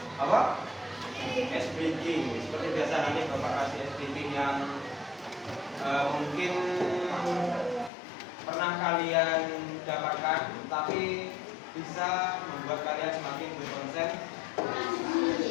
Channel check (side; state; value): right; drops out; at 7.9 s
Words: Apa? Ice breaking. Seperti biasa nanti Bapak kasih ice breaking yang mungkin pernah kalian dapatkan, tapi bisa membuat kalian semakin berkonsen.